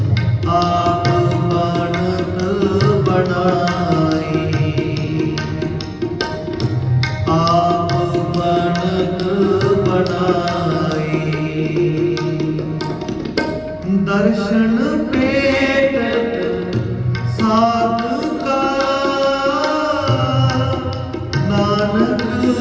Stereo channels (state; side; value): identical; both; correlation 1.00